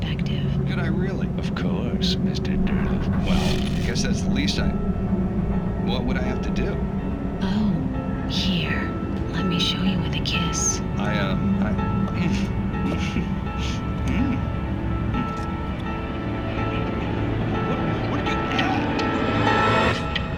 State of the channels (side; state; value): both; identical; correlation 1.00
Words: Could I really? Of course, Mr. Derleth. Well, I guess that's the least I... What would I have to do? Oh, here. Let me show you with a kiss. What did you add?